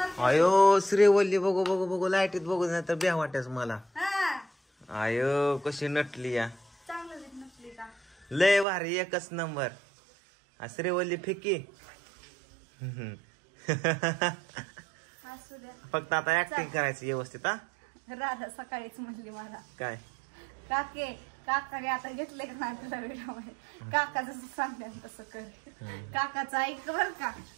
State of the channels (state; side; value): drops out; left; at 8.7 s